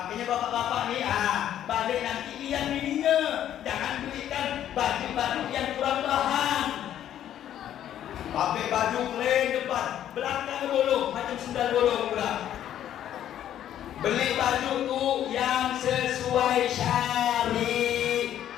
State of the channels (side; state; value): right; quieter; 11.0 dB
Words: bapak-bapak ni balik nanti lihat bininya, jangan berikan baju-baju yang kurang bahan. Pakai baju keren depan, belakang bolong macam sendal bolong pula. Beli baju tu yang sesuai syariat.